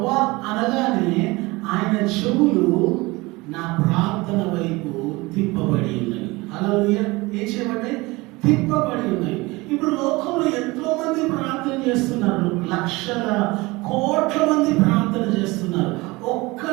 అనగానే ఆయన చెవులు నా ప్రార్థన వైపు తిప్పబడి ఉన్నాయి. హల్లెలూయా. ఏం చేయబడ్డాయి? తిప్పబడి ఉన్నాయి. ఇప్పుడు లోకంలో ఎంతో మంది ప్రార్థన చేస్తున్నారు, లక్షల కోట్ల మంది ప్రార్థన చేస్తున్నారు. ఒక్క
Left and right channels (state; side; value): quieter; left; 22.6 dB